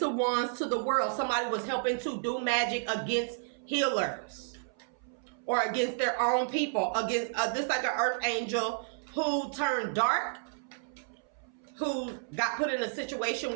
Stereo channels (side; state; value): left; silent; 57 dB below the other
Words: of Wands to the world. Somebody was helping to do magic against healers or against their own people. Against this, like an earth angel who turned dark, who got put in a situation